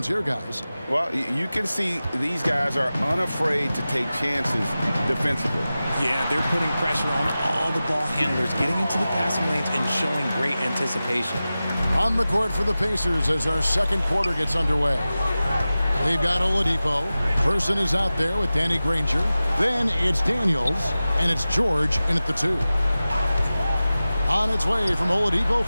here, guys. Well, you can see these guys are unafraid to take chances defensively. Yeah, they're putting pressure on all the ball handlers, getting into the passing lanes and showing great anticipation. On the court for the Pacers as our second quarter gets underway. They've got Oladipo. Person is out there with Danny Granger. Then it's Daniels, and it's George in at the 2. On its way from Oladipo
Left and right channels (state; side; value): inverted; both; correlation -0.95